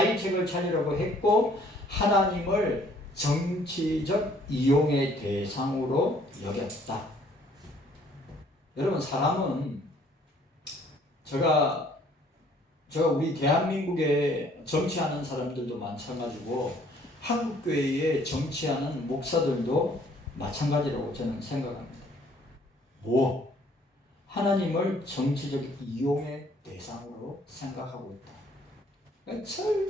찾으려고 했고, 하나님을 정치적 이용의 대상으로 여겼다. 여러분, 사람은 제가 우리 대한민국에 정치하는 사람들도 마찬가지고 한국교회에 정치하는 목사들도 마찬가지라고 저는 생각합니다. 하나님을 정치적 이용의 대상으로 생각하고 있다.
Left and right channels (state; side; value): normal; both; correlation 0.60